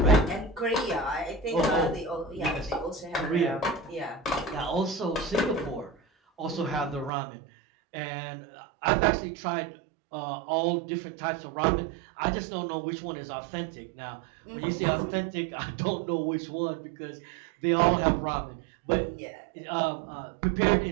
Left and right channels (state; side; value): drops out; left; at 7.1 s